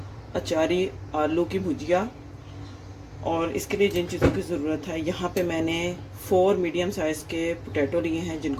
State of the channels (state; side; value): identical; both; correlation 1.00